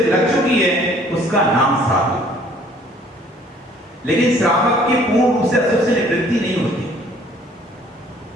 लग चुकी है, उसका नाम साधु। लेकिन श्रावक की पूर्ण रूप से अशुभ से निवृत्ति नहीं होती।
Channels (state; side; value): normal; both; correlation 0.57